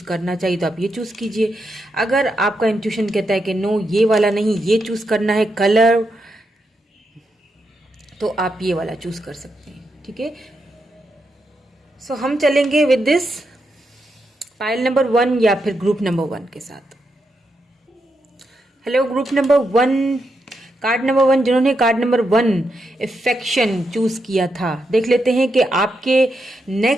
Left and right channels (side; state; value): both; normal; correlation 0.83